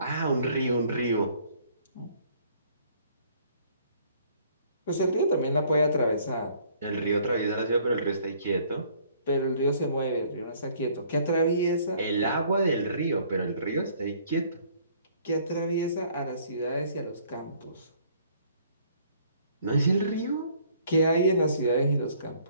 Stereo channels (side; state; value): both; inverted; correlation -0.60